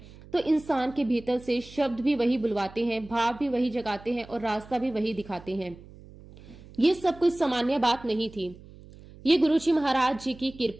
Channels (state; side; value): noise; right; hum, 20 dB below the sound